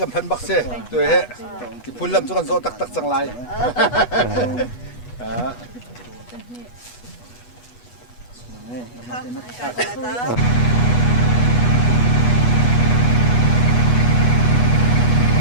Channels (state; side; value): late; right; 8.2 ms